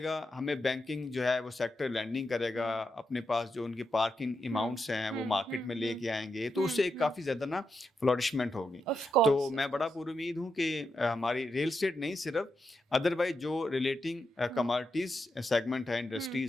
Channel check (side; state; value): both; normal; correlation 0.85